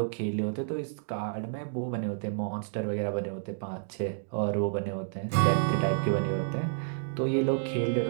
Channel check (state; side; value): silent; left; digital silence